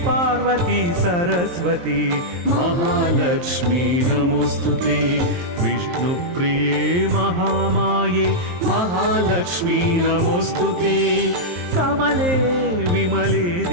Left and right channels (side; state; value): left; late; 23 ms